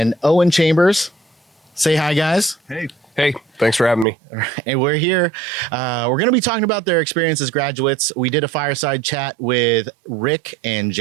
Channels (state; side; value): drops out; left; at 4.0 s